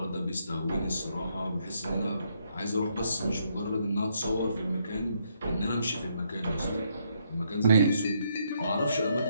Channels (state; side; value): inverted; both; correlation -0.74